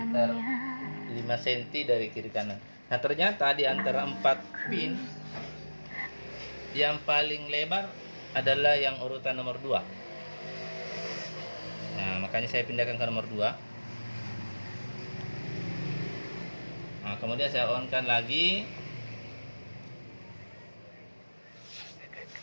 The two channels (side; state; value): both; inverted; correlation -1.00